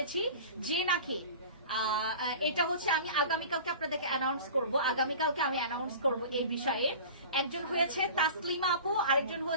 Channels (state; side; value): inverted; both; correlation -0.38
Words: যে নাকি এটা হচ্ছে আমি আগামীকালকে আপনাদেরকে অ্যানাউন্স করব এই বিষয়ে। একজন হয়েছে তাসলিমা আপু, আরেকজন